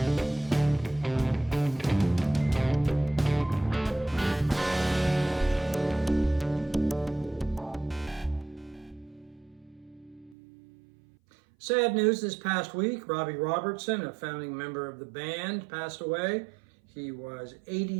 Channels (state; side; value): drops out; left; at 10.4 s